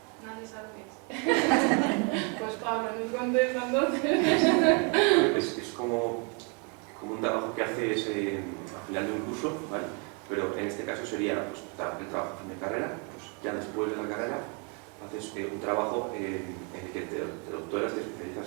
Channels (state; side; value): quieter; left; 33.3 dB